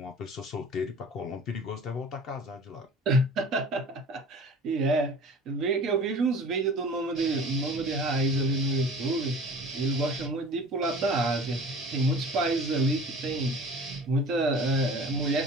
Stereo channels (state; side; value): normal; both; correlation 0.42